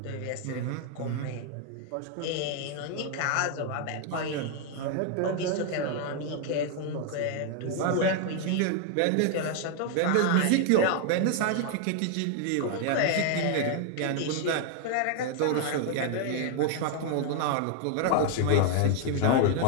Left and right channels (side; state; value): both; different; correlation 0.00